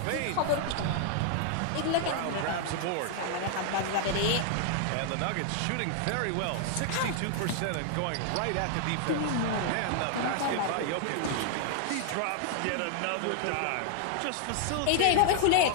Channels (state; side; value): different; both; correlation 0.00